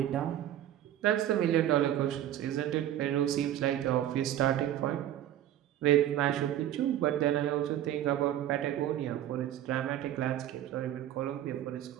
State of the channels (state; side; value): quieter; left; 11.9 dB